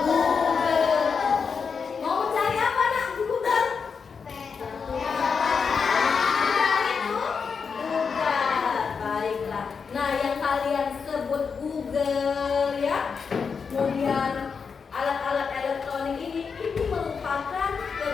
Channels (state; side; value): quieter; right; 5.7 dB